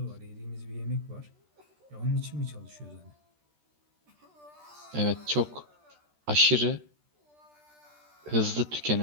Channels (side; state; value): left; late; 13 ms